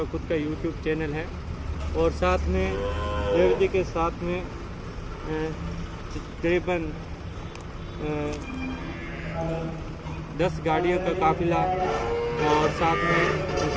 खुद का YouTube चैनल है और साथ में देवी जी के साथ में तकरीबन 10 गाड़ियों का काफिला और साथ में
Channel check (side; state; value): both; identical; correlation 1.00